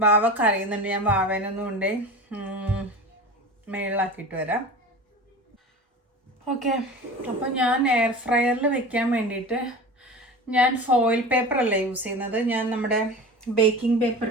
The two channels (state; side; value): normal; both; correlation 0.33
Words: വാവ കറിയുന്നുണ്ട്, ഞാൻ വാവേനൊന്നും കൊണ്ടേ മേളിലാക്കിയിട്ട് വരാം. ഓക്കെ, അപ്പോൾ ഞാൻ എയർ ഫ്രയറിൽ വെക്കാൻ വേണ്ടിയിട്ട് ഞാൻ ഫോയിൽ പേപ്പർ അല്ല യൂസ് ചെയ്യുന്നത്, ഞാൻ നമ്മുടെ ബേക്കിംഗ് പേപ്പർ